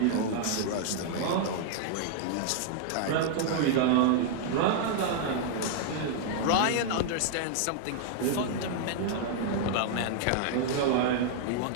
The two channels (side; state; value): both; different; correlation -0.01